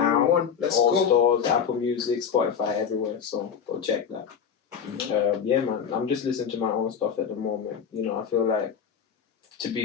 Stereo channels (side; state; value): right; quieter; 7.3 dB